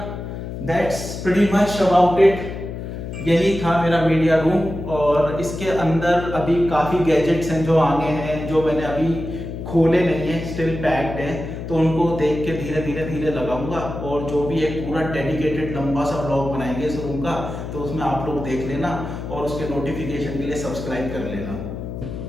that's pretty much about it. यही था मेरा मीडिया रूम, और इसके अंदर अभी काफ़ी गैजेट्स हैं जो आने हैं, जो मैंने अभी खोले नहीं है, स्टिल पैक्ड है, तो उनको देख के धीरे धीरे लगाऊंगा। और जो भी एक पूरा डेडिकेटेड लंबा सा ब्लॉग बनाएंगे इस रूम का, तो उसमें आप लोग देख लेना और उसके नोटिफिकेशन के लिए सब्सक्राइब कर लेना।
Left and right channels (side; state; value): left; noise; hum, 7 dB below the sound